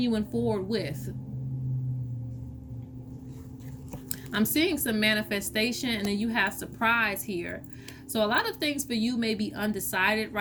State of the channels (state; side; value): identical; both; correlation 1.00